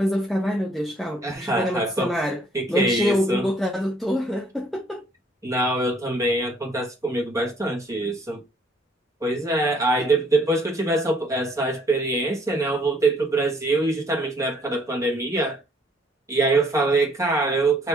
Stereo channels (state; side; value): normal; both; correlation 0.62